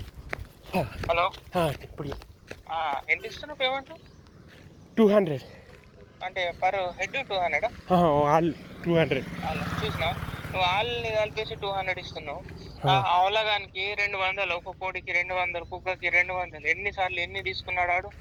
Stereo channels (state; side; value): identical; both; correlation 1.00